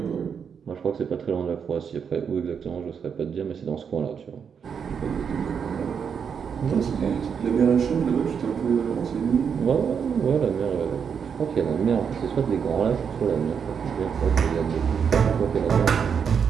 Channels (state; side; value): quieter; left; 6.9 dB